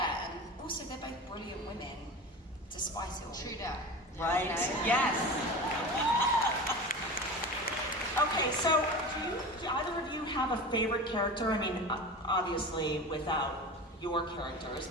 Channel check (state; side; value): normal; both; correlation 0.30